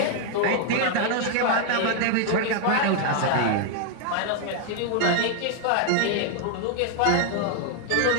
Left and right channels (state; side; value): different; both; correlation 0.00